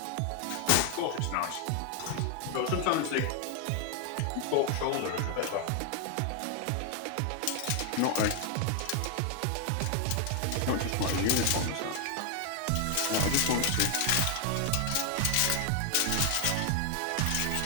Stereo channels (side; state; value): both; different; correlation 0.00